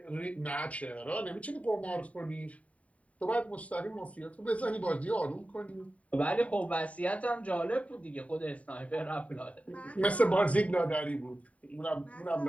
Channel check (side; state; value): right; late; 0.067 ms